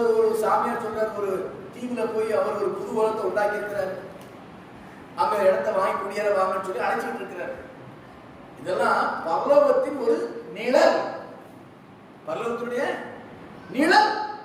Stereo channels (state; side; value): identical; both; correlation 1.00